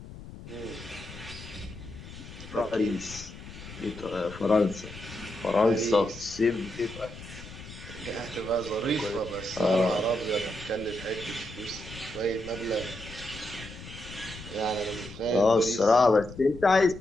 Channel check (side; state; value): left; noise; rumble, 14 dB below the sound